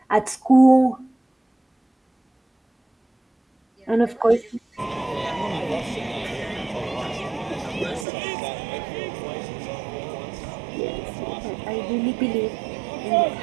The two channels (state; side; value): drops out; left; at 8.1 s